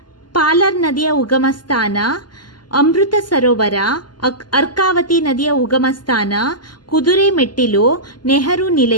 ಪಾಲರ್ ನದಿಯ ಉಗಮ ಸ್ಥಾನ, ಅಮೃತ ಸರೋವರ, ಅರ್ಕಾವತಿ ನದಿಯ ಉಗಮ ಸ್ಥಾನ, ಕುದುರೆ ಮೆಟ್ಟಿಲು, ನೆಹರು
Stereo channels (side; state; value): right; late; 0.71 ms